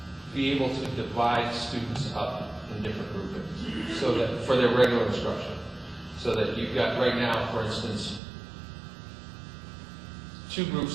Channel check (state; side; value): drops out; left; at 8.2 s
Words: be able to divide students up in different groupings, so that for their regular instruction, so that you've got right now, for instance, 2